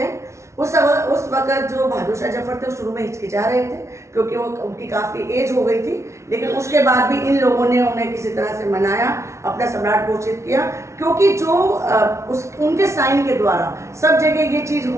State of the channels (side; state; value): left; late; 0.13 ms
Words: हैं। उस वक्त जो बहादुर शाह जफर थे शुरू में हिचकिचा रहे थे, क्योंकि वो उनकी काफ़ी एज हो गई थी, लेकिन उसके बाद भी इन लोगों ने उन्हें किसी तरह से मनाया, अपना सम्राट घोषित किया, क्योंकि जो उनके साइन के द्वारा सब जगह ये चीज़